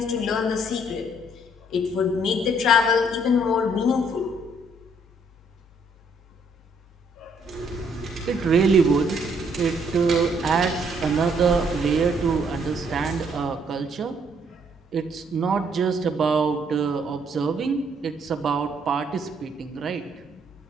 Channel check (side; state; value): both; normal; correlation 0.67